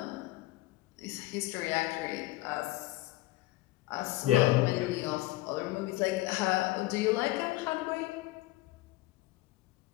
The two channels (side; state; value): right; quieter; 18.3 dB